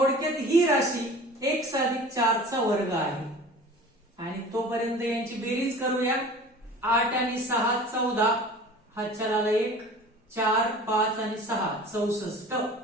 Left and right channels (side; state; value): both; normal; correlation 0.42